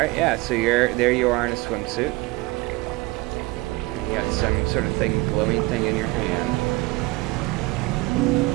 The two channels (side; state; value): left; quieter; 22.3 dB